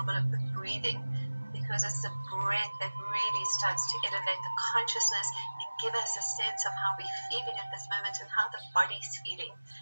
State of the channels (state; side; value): inverted; both; correlation -1.00